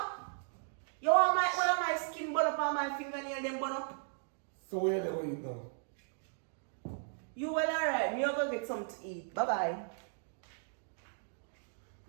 You want one of my skin burn up on my fingernail them burn up? So where they will eat now? You well alright, me go get something to eat. Bye bye.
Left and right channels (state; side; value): silent; left; digital silence